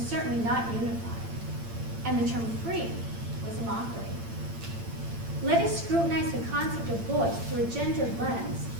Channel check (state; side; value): late; left; 8.8 ms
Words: certainly not unified, and the term free was a mockery. Let us scrutinize the concept of voice through a gendered lens